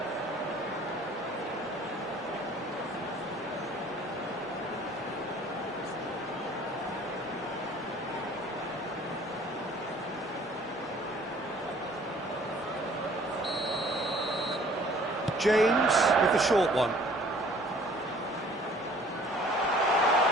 James with the short one.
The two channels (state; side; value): normal; both; correlation 0.54